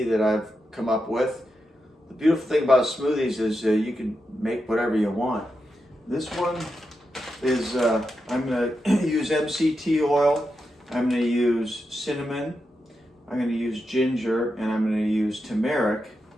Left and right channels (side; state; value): both; normal; correlation 0.87